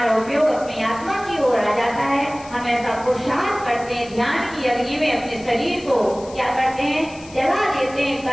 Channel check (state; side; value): noise; left; hiss, 21 dB below the sound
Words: उपयोग अपनी आत्मा की ओर आ जाता है, हम ऐसा पुरुषार्थ करते हैं, ध्यान की अग्नि में अपने शरीर को क्या करते हैं, जला देते हैं,